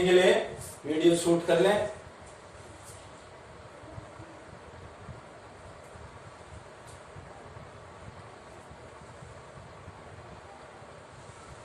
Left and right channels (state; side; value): identical; both; correlation 1.00